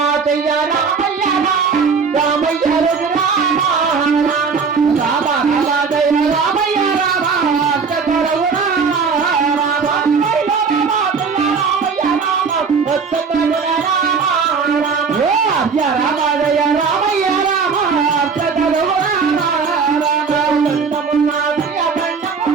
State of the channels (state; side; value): quieter; left; 5.4 dB